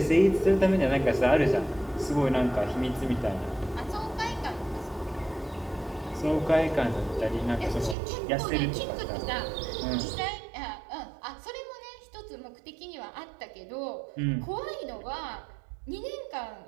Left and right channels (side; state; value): left; drops out; at 8.0 s